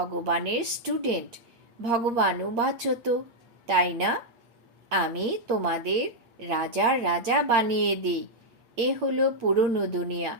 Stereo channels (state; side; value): late; left; 8.7 ms